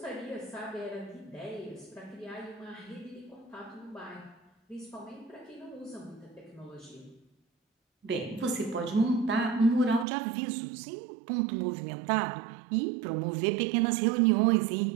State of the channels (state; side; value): drops out; left; at 10.1 s